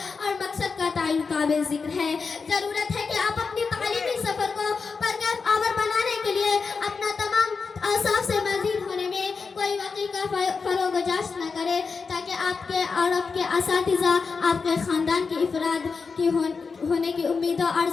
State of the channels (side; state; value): right; quieter; 4.9 dB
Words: اور مقصد کا تعین قابل ذکر ہے۔ ضرورت ہے کہ آپ اپنی تعلیمی سفر کو پرکیف آور بنانے کے لیے اپنا تمام اوصاف سے مزید ہونے میں کوئی واقعی کا فروغ و جاش نہ کرے، تاکہ آپ کے اور آپ کے اساتذہ آپ کے خاندان کی افراد کی ہونے کی امیدوں